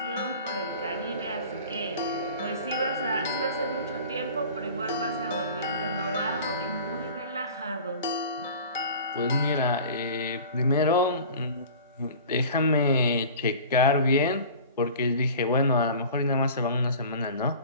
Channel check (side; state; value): both; inverted; correlation -0.41